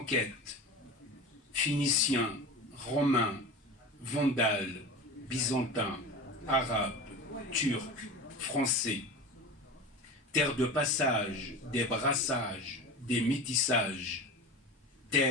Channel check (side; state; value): both; normal; correlation 0.31